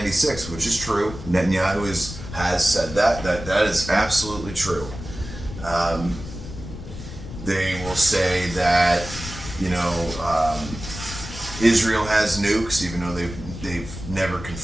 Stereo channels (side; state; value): left; noise; rumble, 11 dB below the sound